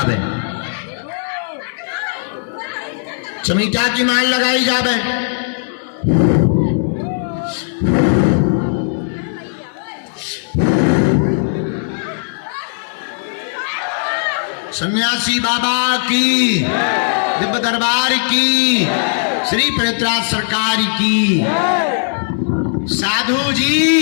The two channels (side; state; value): right; silent; 68 dB below the other